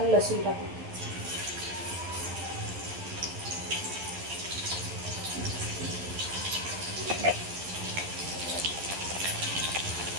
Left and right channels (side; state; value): left; late; 11 ms